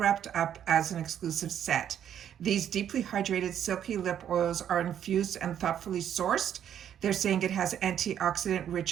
up as an exclusive set. These deeply hydrated, silky lip oils are infused and thoughtfully sourced. They're saying it has antioxidant-rich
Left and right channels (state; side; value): quieter; left; 9.7 dB